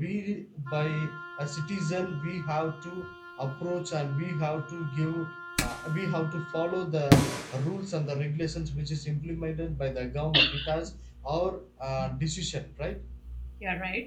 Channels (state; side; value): identical; both; correlation 1.00